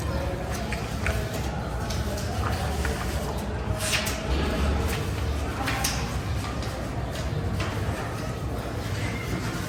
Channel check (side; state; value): both; identical; correlation 1.00